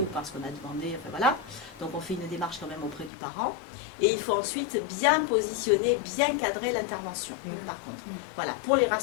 ou parce qu'on a demandé, enfin voilà, donc on fait une démarche quand même auprès du parent, et il faut ensuite bien positionner, bien cadrer l'intervention, par contre, voilà, pour les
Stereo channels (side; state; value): right; drops out; at 3.1 s